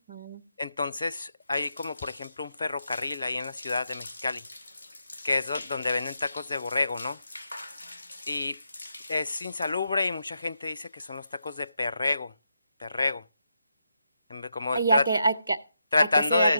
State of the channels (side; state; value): both; inverted; correlation -0.84